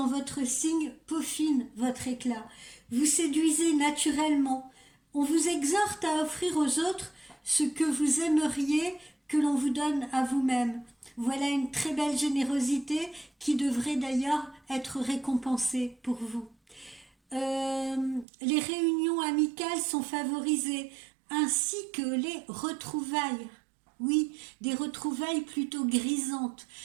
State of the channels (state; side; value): drops out; left; at 18.2 s